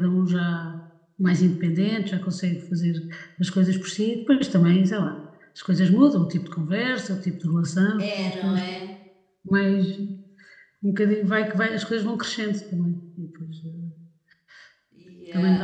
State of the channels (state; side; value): identical; both; correlation 1.00